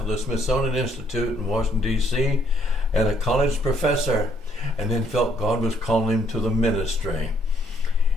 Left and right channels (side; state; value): both; normal; correlation 0.67